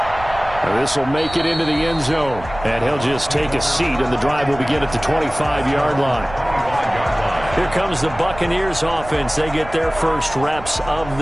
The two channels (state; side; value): noise; right; rumble, 14 dB below the sound